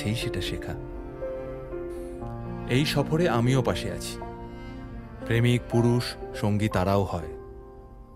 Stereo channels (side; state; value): both; identical; correlation 1.00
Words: সেটা শেখা। এই সফরে আমিও পাশে আছি, প্রেমিক পুরুষ সঙ্গী তারাও হয়।